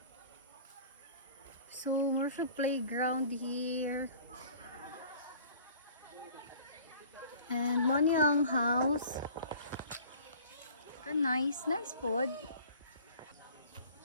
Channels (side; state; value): both; inverted; correlation -0.48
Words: So more siya playground here and mo nilang house. Ka nice food.